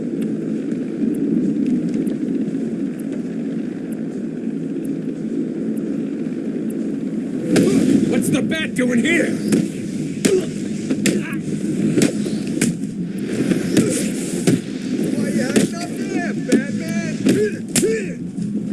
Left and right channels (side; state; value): both; identical; correlation 1.00